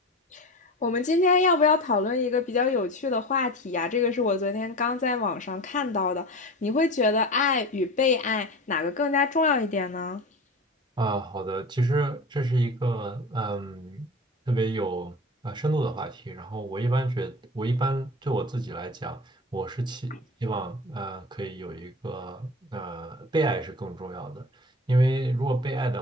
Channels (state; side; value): normal; both; correlation 0.32